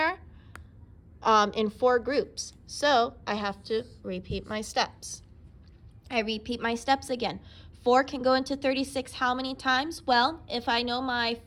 in 4 groups. So I have to repeat my steps. I repeat my steps again. 4 can go into 36 how many times? Well, if I know my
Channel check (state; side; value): identical; both; correlation 1.00